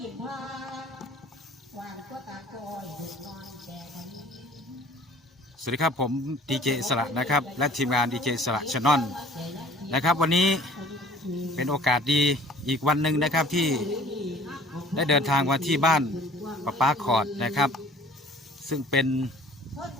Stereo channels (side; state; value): both; normal; correlation 0.50